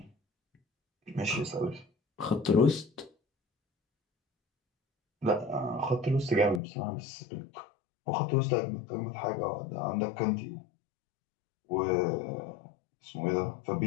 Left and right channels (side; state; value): right; drops out; at 6.6 s